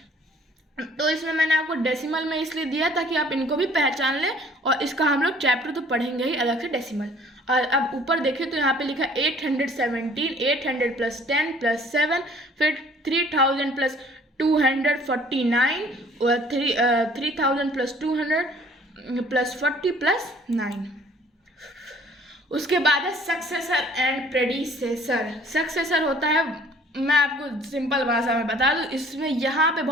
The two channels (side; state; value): both; normal; correlation 0.54